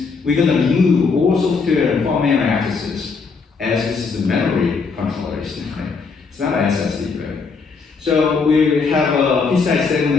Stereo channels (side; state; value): right; quieter; 4.9 dB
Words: we're going to remove all software and firmware accesses, as this is a memory controllers. It's not an SSD, right? So we have a PCI